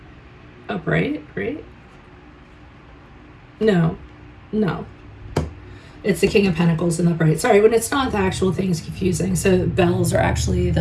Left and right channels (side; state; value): both; identical; correlation 1.00